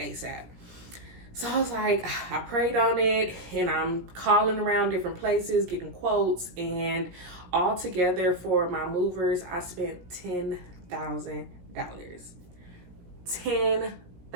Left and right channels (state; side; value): late; left; 17 ms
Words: So I was like, I prayed on it, and I'm calling around different places, getting quotes, and all together for my movers, I spent $10,000.